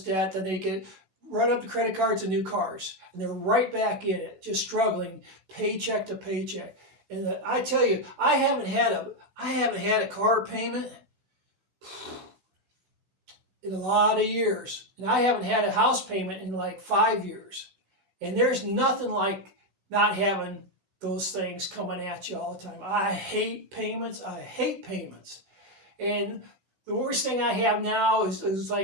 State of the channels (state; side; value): late; left; 16 ms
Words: debt, then they run up the credit cards and new cars, and they're right back in it, just struggling paycheck to paycheck. And I tell you, I haven't had a car payment in a lot of years, and I haven't had a house payment in like 5 years. And there's nothing like not having those things coming at you all the time. I hate payments. And the worst thing I have now is